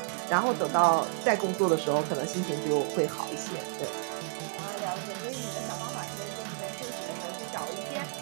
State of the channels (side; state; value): left; silent; digital silence